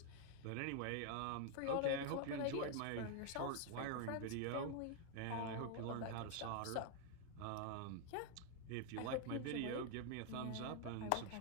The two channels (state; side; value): different; both; correlation 0.00